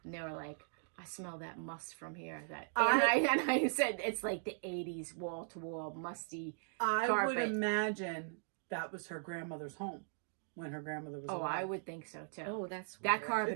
and they were like, "I smell that must from here." And I said it's like the '80s wall to wall musty carpet. I would imagine that was her grandmother's home when her grandmother was alive. I would think so too. Oh, that's that weird. carpet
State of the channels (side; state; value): left; silent; digital silence